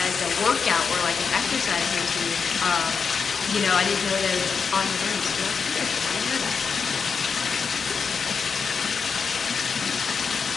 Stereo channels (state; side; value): quieter; right; 5.7 dB